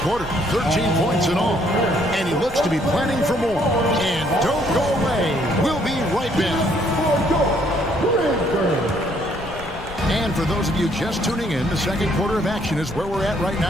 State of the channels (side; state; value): left; noise; rumble, 16 dB below the sound